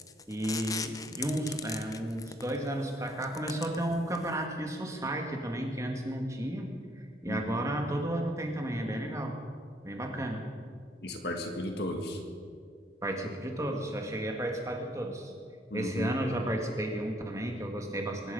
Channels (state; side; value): normal; both; correlation 0.66